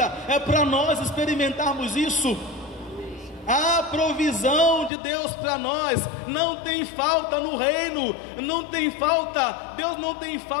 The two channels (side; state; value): right; drops out; at 4.9 s